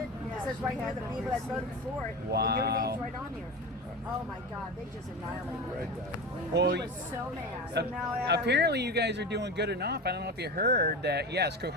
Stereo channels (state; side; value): normal; both; correlation 0.27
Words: It says right here the people that voted for it. And your Wow. name's right on here. Oh my God, they just annihilated him. Well, He was so mad. apparently you guys are doing good enough. I don't know if you heard that. Yes,